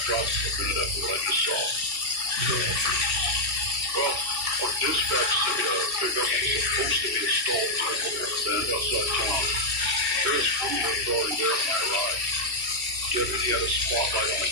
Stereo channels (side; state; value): left; late; 2.6 ms